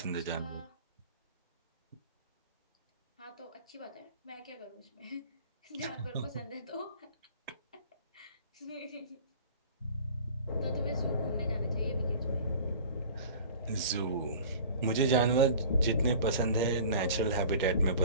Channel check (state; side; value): inverted; both; correlation -0.43